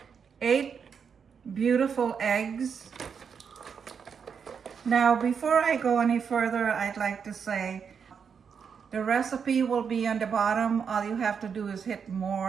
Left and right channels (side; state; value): left; quieter; 6.6 dB